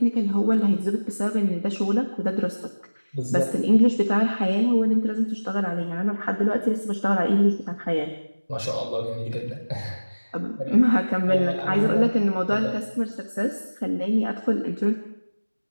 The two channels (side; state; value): both; inverted; correlation -1.00